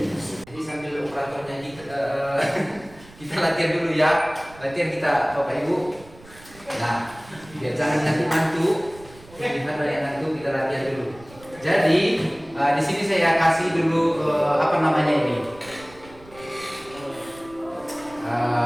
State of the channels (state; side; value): noise; right; rumble, 22 dB below the sound